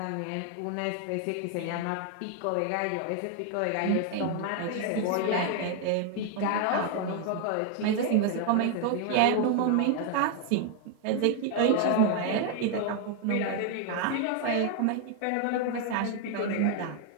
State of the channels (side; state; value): both; different; correlation 0.01